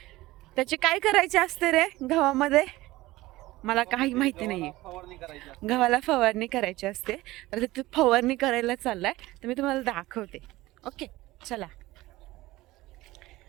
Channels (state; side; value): quieter; left; 18.3 dB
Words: त्याचे काय करायचे असते रे गव्हामध्ये. मला काही माहिती नाही आहे. गव्हाला फवारणी करायची असते, तर ते फवारणी करायला चाललाय, तर मी तुम्हाला दाखवते. ओके चला.